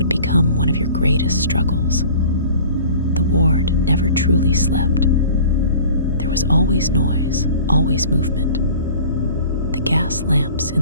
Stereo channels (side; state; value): both; inverted; correlation -0.45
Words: become one of your greatest struggles. The ward never truly slept. There was always noise, always movement. The gas lamps in